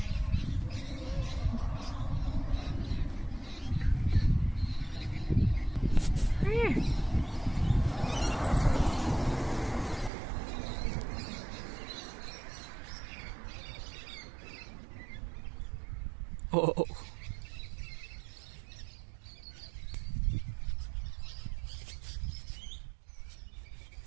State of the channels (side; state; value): left; drops out; at 10.1 s